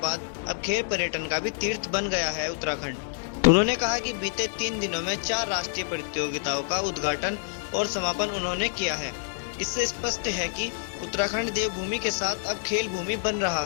अब खेल पर्यटन का भी तीर्थ बन गया है उत्तराखंड। उन्होंने कहा कि बीते 3 दिनों में 4 राष्ट्रीय प्रतियोगिताओं का उद्घाटन और समापन उन्होंने किया है। इससे स्पष्ट है कि उत्तराखंड देवभूमि के साथ अब खेल भूमि बन रहा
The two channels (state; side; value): silent; right; digital silence